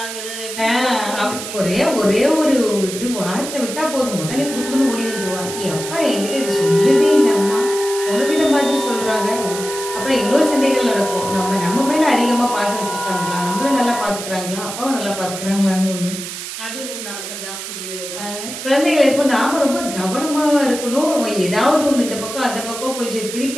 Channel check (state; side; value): noise; right; hiss, 8 dB below the sound